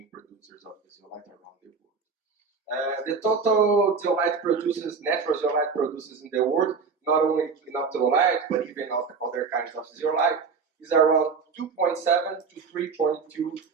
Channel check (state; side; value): quieter; left; 5.2 dB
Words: producers of the zeolite around the world. The total zeolite produces, natural zeolite produces in the world, not only clinoptilolite, but even other kinds of zeolite, is around 2.7 to 3.2